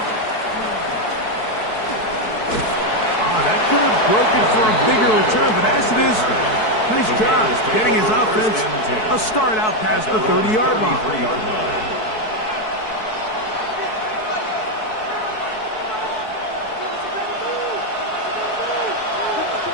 That could have broken for a bigger return, but as it is, nice job getting his offense a start out past the 30-yard line.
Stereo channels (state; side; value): late; right; 4.6 ms